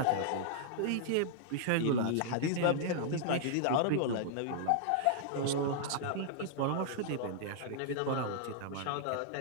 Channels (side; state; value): both; different; correlation -0.01